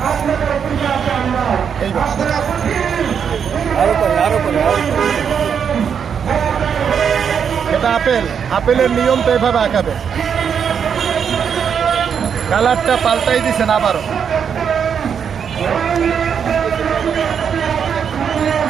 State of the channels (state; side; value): quieter; left; 7.4 dB